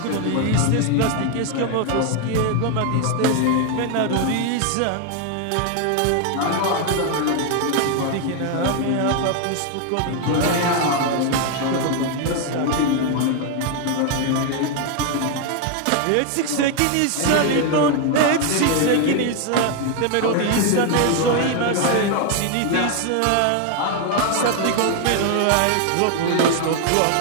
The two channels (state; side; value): different; both; correlation 0.01